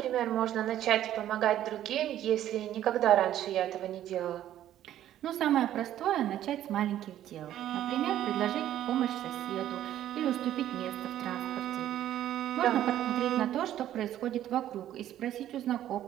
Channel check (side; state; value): left; quieter; 12.1 dB